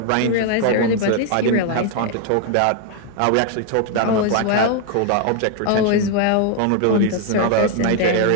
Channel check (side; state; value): both; different; correlation 0.00